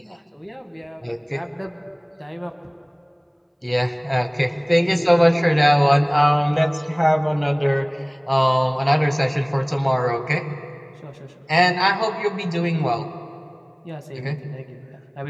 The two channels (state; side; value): identical; both; correlation 1.00